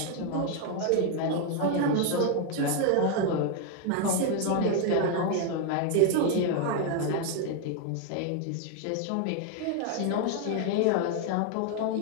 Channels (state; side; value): different; both; correlation 0.01